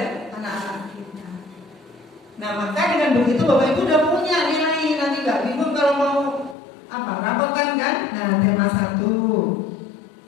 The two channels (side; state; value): right; drops out; at 6.6 s